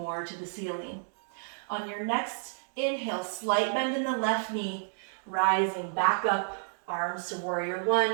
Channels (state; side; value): silent; left; digital silence